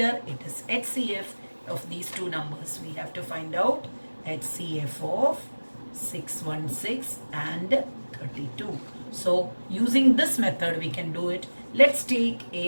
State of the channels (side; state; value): both; inverted; correlation -1.00